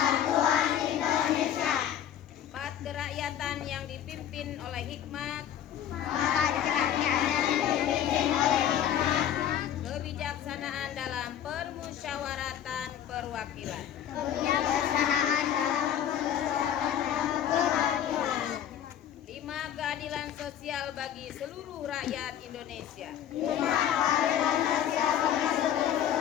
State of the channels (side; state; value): right; quieter; 10.2 dB